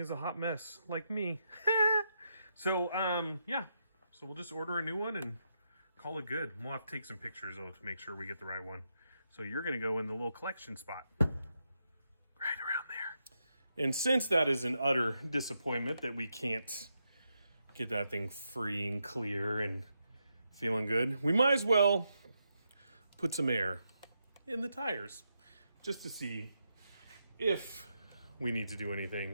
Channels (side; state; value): both; inverted; correlation -0.83